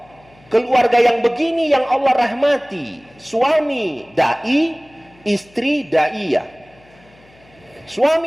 Keluarga yang begini yang Allah rahmati, suami dai, istri daiyah.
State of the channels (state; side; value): noise; left; hum, 29 dB below the sound